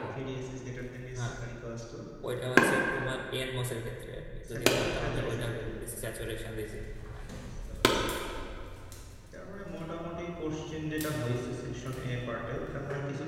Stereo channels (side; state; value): both; identical; correlation 1.00